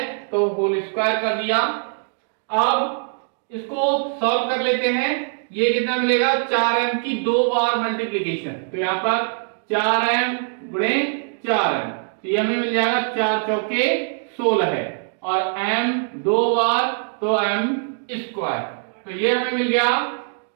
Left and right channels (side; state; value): left; silent; 64 dB below the other